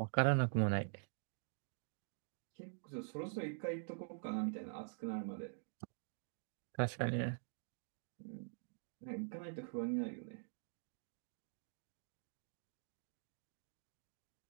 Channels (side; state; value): left; silent; digital silence